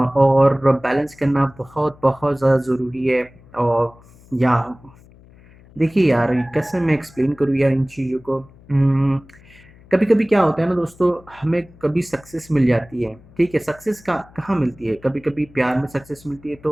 बैलेंस करना बहुत बहुत ज़्यादा ज़रूरी है। और या देखिए यार, कैसे मैं एक्सप्लेन करूँ यार इन चीज़ों को। कभी कभी क्या होता है ना दोस्तों, हमें कभी सक्सेस मिल जाती है, ठीक है। सक्सेस का कहाँ मिलती है? कभी कभी प्यार में सक्सेस मिलती है,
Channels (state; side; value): noise; left; hum, 25 dB below the sound